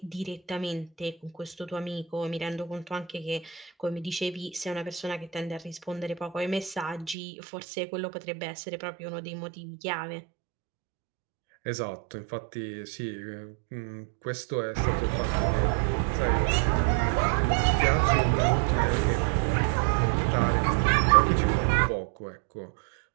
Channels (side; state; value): left; drops out; at 7.2 s